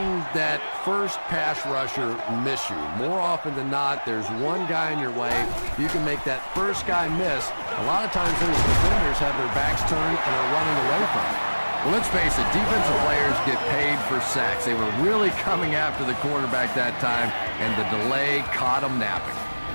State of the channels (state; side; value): inverted; both; correlation -1.00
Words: that first pass rusher miss you. More often than not, there's one guy in your way. You can make that first guy miss. A lot of times those defenders have their backs turned and are running away from it. Well, let's face it, defensive players get paid for sacks. They were really coming after the quarterback that time, and the delay caught them napping.